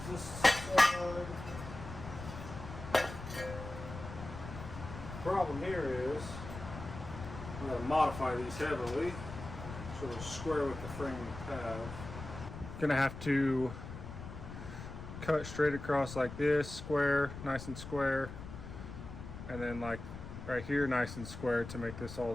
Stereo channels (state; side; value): noise; left; rumble, 10 dB below the sound